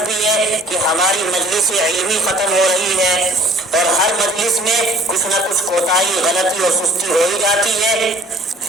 بھی ہے کہ ہماری مجلس علمی ختم ہو رہی ہے، اور ہر مجلس میں کچھ نہ کچھ کوتاہی، غلطی اور سستی ہو ہی جاتی ہے۔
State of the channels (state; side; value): normal; both; correlation 0.53